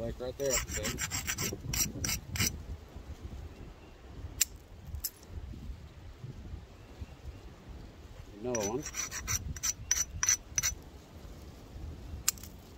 right there. Another one.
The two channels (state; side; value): identical; both; correlation 1.00